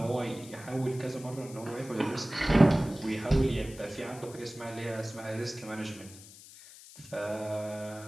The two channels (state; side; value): noise; left; hiss, 18 dB below the sound